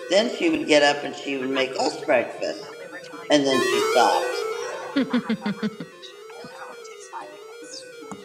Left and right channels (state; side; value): identical; both; correlation 1.00